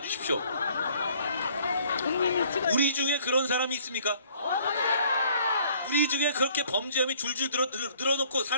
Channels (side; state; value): both; inverted; correlation -0.59